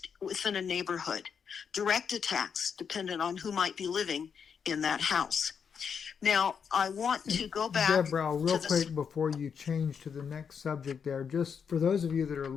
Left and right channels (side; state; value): right; quieter; 6.8 dB